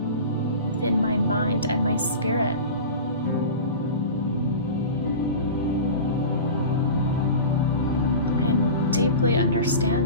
within my mind and my spirit. I am deeply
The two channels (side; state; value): both; inverted; correlation -0.32